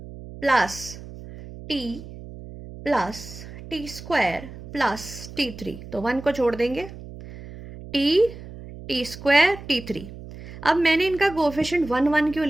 + t + t² + t3, तो 1 को छोड़ देंगे, t² t3। अब मैंने इनका कोफिशिएंट 1 1 क्यों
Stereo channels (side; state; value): right; noise; hum, 14 dB below the sound